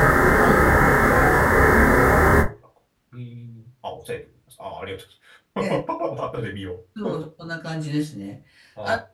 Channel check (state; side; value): identical; both; correlation 1.00